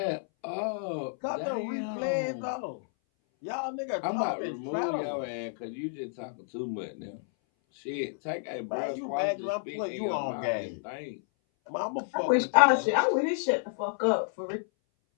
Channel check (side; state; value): right; silent; 58 dB below the other